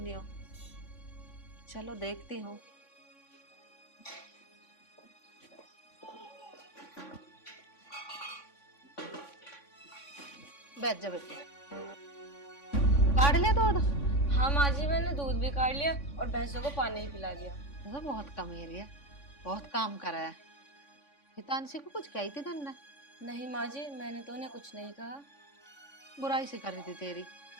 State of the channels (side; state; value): right; late; 3.5 ms